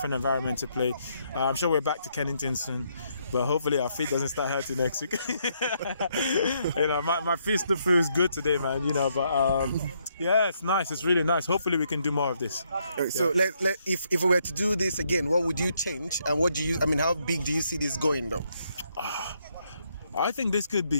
environment to play. I'm sure we're back to Kennington soon, but hopefully our feet doesn't start hurting next week. My feet still feels good today, man. But yeah, it's nice. It's really nice. Hopefully we can do more of this. So if we were to do this again, what would you change, and how big do you see this going, though? I think this could be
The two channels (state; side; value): inverted; both; correlation -0.74